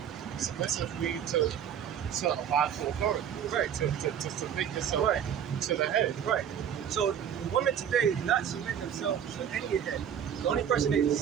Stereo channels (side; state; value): left; quieter; 8.9 dB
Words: Submissive means to abide to authority. Right. To submit yourself Right. to the head. Right. So women today do not submit themselves to any head. The only person they